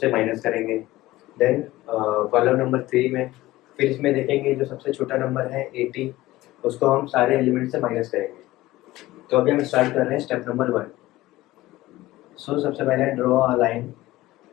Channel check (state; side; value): quieter; right; 17.4 dB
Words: माइनस करेंगे। देन कॉलम नंबर 3 में फिर इसमें देखेंगे जो सबसे छोटा नंबर है 80, उसको हम सारे एलिमेंट से माइनस करेंगे। तो अभी हम स्टार्ट कर रहे हैं स्टेप नंबर 1। सो सबसे पहले draw a line